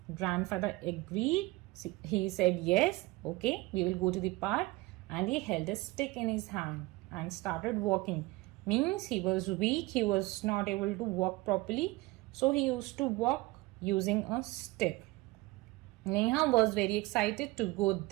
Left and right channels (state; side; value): quieter; left; 21.3 dB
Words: Grandfather agreed. He said yes, okay, we will go to the park, and he held a stick in his hand and started walking. Means he was weak, he was not able to walk properly, so he used to walk using a stick. Neha was very excited to go